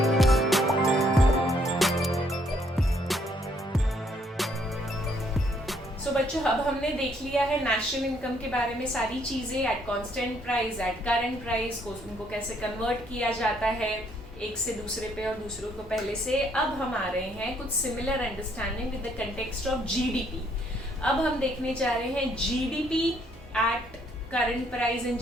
तो बच्चों अब हमने देख लिया है नेशनल इनकम के बारे में सारी चीजें, eight constant price, at current price को उनको कैसे कन्वर्ट किया जाता है एक से दूसरे पे और दूसरों को पहले से. अब हम आ रहे हैं कुछ similar understanding with the context of GDP. अब हम देखने जा रहे हैं GDP at current price and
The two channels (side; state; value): both; normal; correlation 0.68